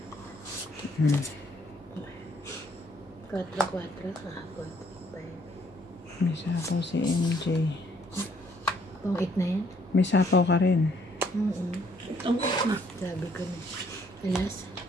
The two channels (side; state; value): both; normal; correlation 0.66